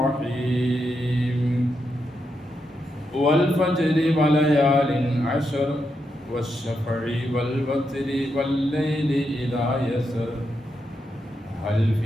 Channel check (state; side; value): normal; both; correlation 0.83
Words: والفجر وليال عشر والشفع والوتر والليل إذا يسر هل